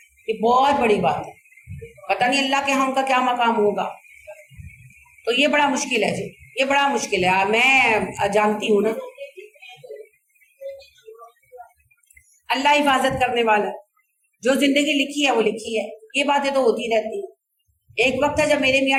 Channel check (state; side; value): identical; both; correlation 1.00